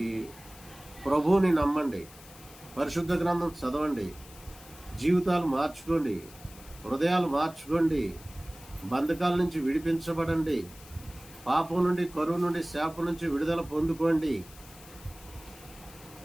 ప్రభువుని నమ్మండి, పరిశుద్ధ గ్రంథం చదవండి, జీవితాలు మార్చుకోండి, హృదయాలు మార్చుకోండి, బంధకాల నుంచి విడిపించబడండి, పాపం నుండి, కరువు నుండి, శాపం నుంచి విడుదల పొందుకోండి.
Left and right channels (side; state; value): left; noise; hiss, 20 dB below the sound